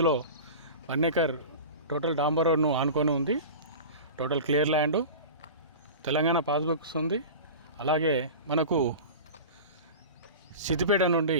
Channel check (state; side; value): inverted; both; correlation -0.33